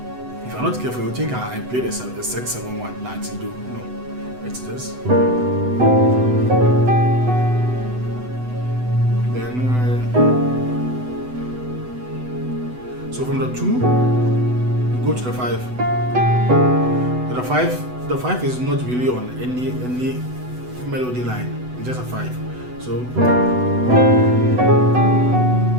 Not careful, you think I played a 6-7-1 Latin. No, it's this. Then so from the 2 we go to the 5. The 5 is not really on any melody line. It's just a 5. So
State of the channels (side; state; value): left; late; 8.0 ms